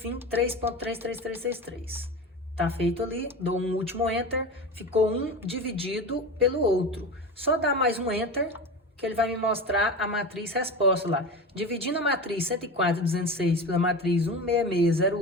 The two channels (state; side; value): normal; both; correlation 0.28